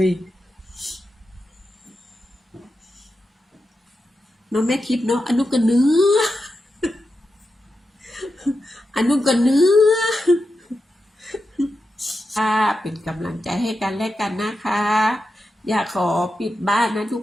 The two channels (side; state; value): both; normal; correlation 0.89